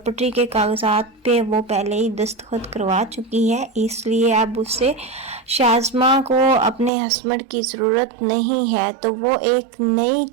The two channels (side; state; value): left; drops out; at 6.9 s